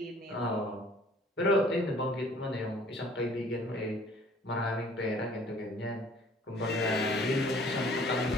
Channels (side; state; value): both; normal; correlation 0.54